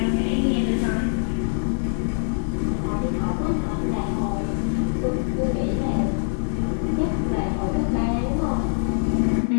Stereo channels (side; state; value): right; silent; 63 dB below the other